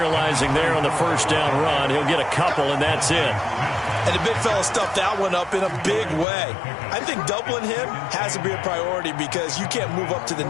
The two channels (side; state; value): right; drops out; at 6.2 s